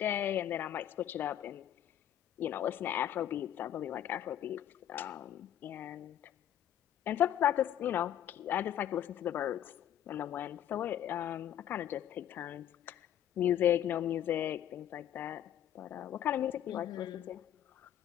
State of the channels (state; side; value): quieter; right; 10.8 dB